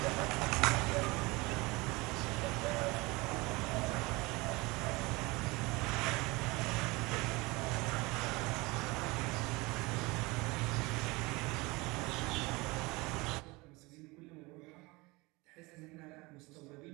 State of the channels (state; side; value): quieter; left; 23.9 dB